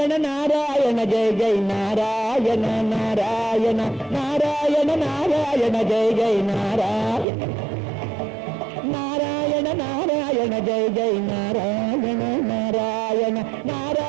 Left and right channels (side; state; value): left; drops out; at 7.2 s